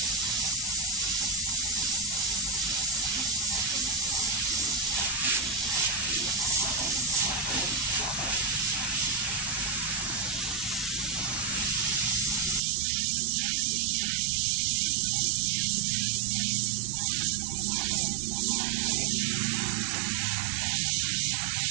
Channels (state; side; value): drops out; left; at 12.6 s